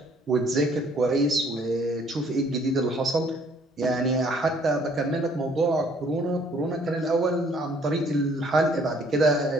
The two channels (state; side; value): normal; both; correlation 0.61